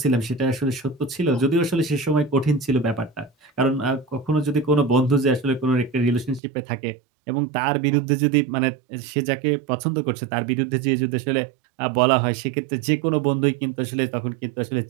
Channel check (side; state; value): left; drops out; at 6.4 s